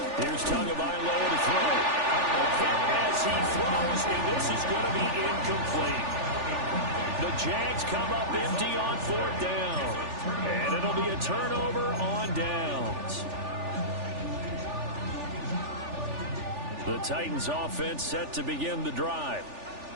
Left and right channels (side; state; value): left; late; 3.4 ms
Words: Here's Tagovailoa to throw. A hit as he throws, and this is going to be incomplete. The Jags come up empty on 4th down. And it'll be a turnover on downs. The Titans offense set to begin the drive.